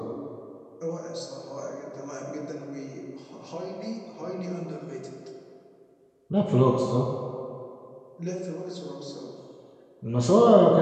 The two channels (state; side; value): identical; both; correlation 1.00